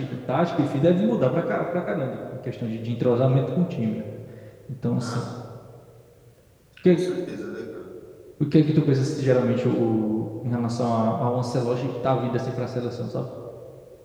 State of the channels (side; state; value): both; identical; correlation 1.00